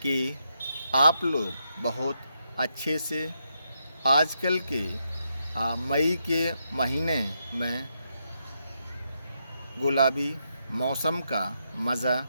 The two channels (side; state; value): both; inverted; correlation -0.81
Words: कि आप लोग बहुत अच्छे से आजकल के मई के महीने में गुलाबी मौसम का मज़ा